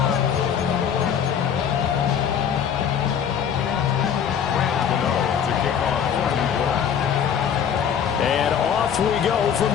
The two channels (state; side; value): quieter; right; 8.1 dB